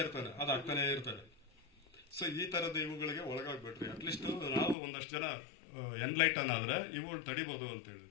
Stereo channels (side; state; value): right; drops out; at 4.8 s